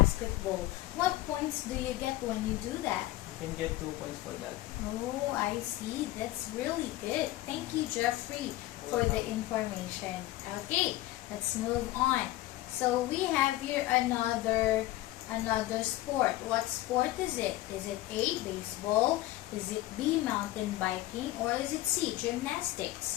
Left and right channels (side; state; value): right; quieter; 16.9 dB